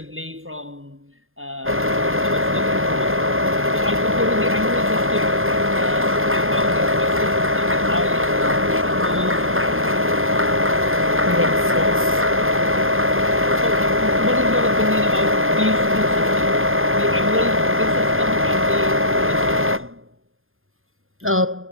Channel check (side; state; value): left; late; 0.60 ms